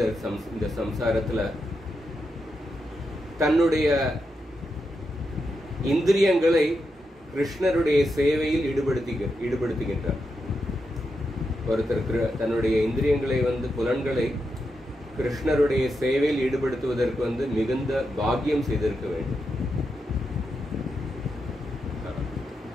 இந்த சம்சாரத்துல தன்னுடைய இந்திரியங்களை கிருஷ்ணருடைய சேவையில் ஈடுபடுத்துகின்றார். ஒருத்தர் தன்னுடைய இந்திரியங்களை வந்து புலன்களை கிருஷ்ணருடைய சேவையில் ஈடுபடுத்துவதற்கு வந்து மிகுந்த பாக்கியம் செய்திருக்க வேண்டும்.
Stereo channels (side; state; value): both; normal; correlation 0.86